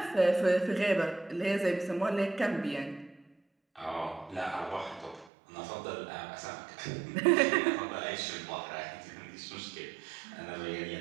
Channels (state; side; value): drops out; left; at 5.3 s